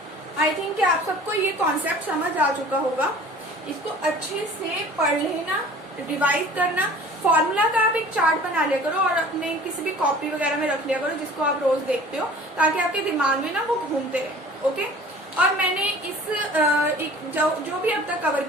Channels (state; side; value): normal; both; correlation 0.46